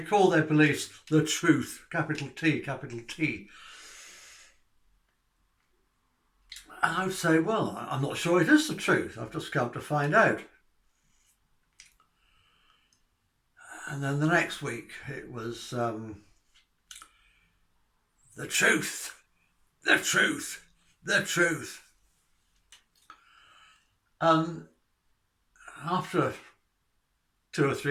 call their beliefs the truth, capital T, capital T. And I would say, well, I'm not sure it is the truth. I've just come to find out. And then the next week it was the truth, the truth, the truth. And after 2 or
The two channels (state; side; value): identical; both; correlation 1.00